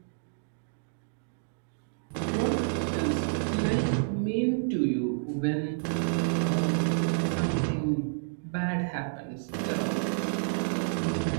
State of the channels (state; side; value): silent; left; digital silence